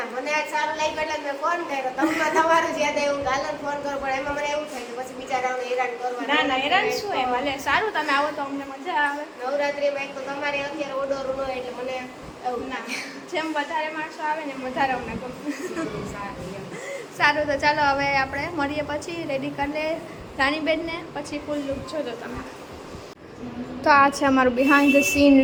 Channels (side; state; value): both; identical; correlation 1.00